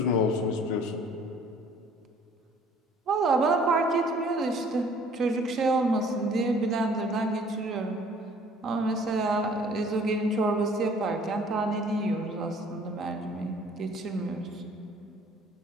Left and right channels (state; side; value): normal; both; correlation 0.55